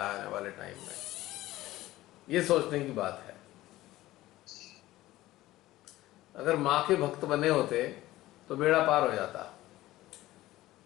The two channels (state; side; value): quieter; right; 16.4 dB